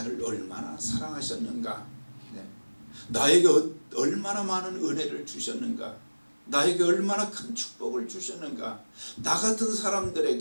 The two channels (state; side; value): inverted; both; correlation -1.00